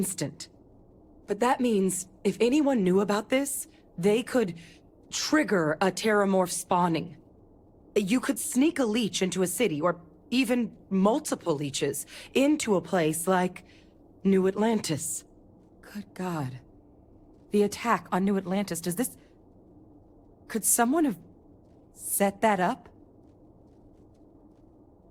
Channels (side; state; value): both; identical; correlation 1.00